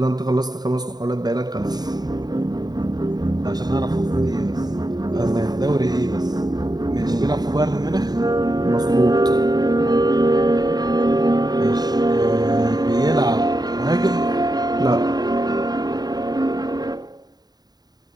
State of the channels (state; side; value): late; left; 0.19 ms